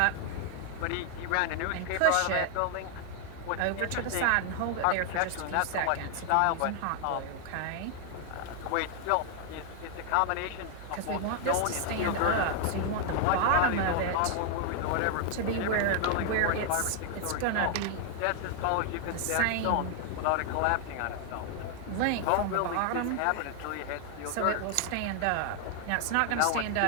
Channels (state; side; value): different; both; correlation 0.00